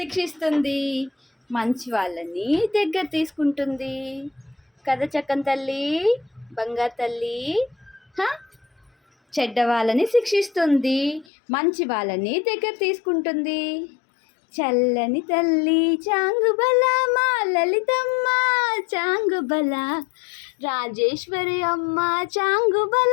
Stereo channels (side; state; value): right; drops out; at 11.2 s